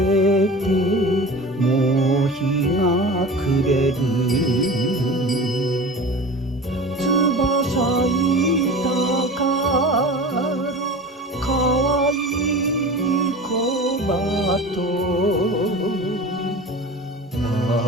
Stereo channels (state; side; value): normal; both; correlation 0.35